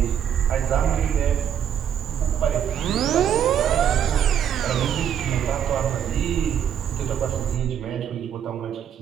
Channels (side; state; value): left; quieter; 9.1 dB